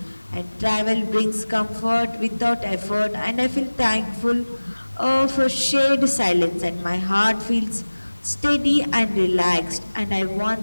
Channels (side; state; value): both; inverted; correlation -1.00